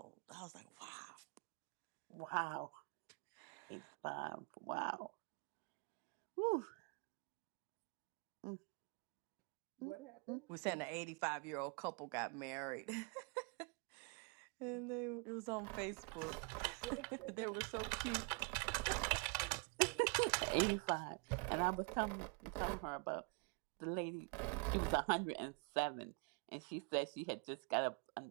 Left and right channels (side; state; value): left; quieter; 35.3 dB